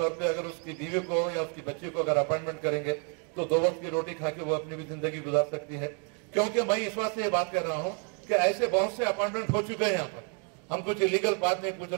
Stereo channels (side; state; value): left; quieter; 38.5 dB